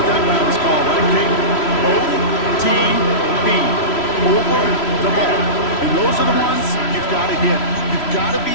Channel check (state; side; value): late; right; 3.0 ms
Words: that round is called, right, King? OTB. Over the ball. And those are the ones you've got to hit. You've got to be